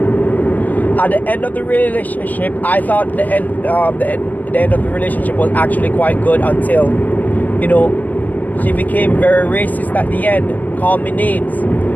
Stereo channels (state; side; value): late; right; 0.082 ms